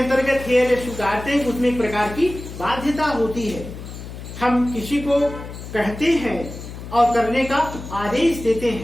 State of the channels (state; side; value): noise; left; hum, 11 dB below the sound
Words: हेयर स्वीकारते हैं, उसमें एक प्रकार की बाध्यता होती है। हम किसी को कहते हैं और करने का आदेश देते